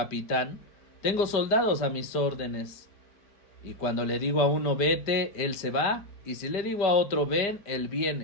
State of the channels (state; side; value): late; right; 5.0 ms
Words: tengo soldados a mis órdenes. Y cuando le digo a uno vete, él se va, y si le digo a otro ven, él